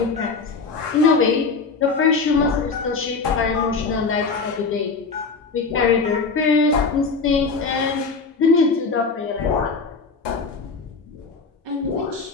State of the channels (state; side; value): quieter; right; 4.5 dB